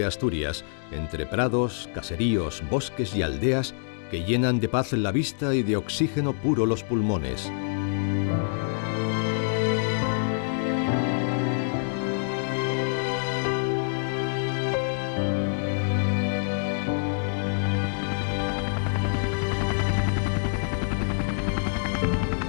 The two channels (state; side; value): silent; right; digital silence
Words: Asturias, entre prados, caseríos, bosques y aldeas que llenan de paz la vista y de oxígeno puro los pulmones.